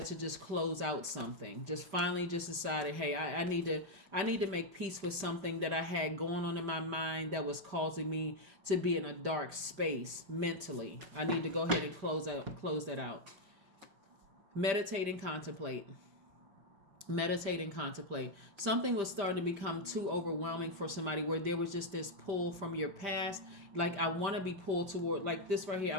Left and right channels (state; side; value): late; left; 5.1 ms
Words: to just close out something. Just finally just decided, hey, I need to make peace with something that I had going on in my mind that was causing me to be in a dark space mentally. I need to go ahead and close that out. Meditate and contemplate. Meditate and contemplate. Something was starting to become too overwhelming for somebody, where there was just this pull from your past. Like, I want to be pulled toward, like this right here, I